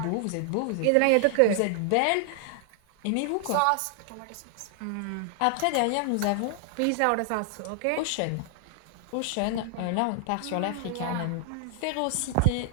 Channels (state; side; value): different; both; correlation 0.00